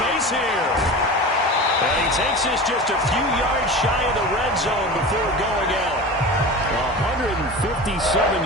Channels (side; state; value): both; normal; correlation 0.32